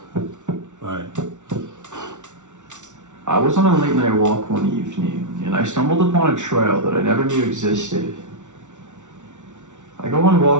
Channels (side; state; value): left; late; 0.85 ms